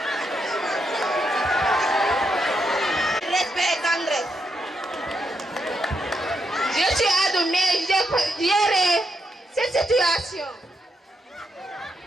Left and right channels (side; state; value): both; normal; correlation 0.81